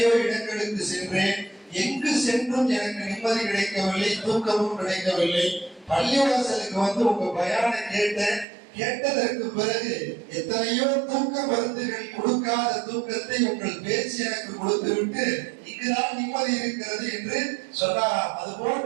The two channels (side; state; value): left; drops out; at 8.5 s